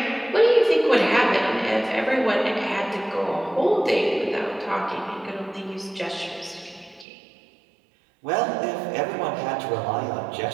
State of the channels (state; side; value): drops out; left; at 7.1 s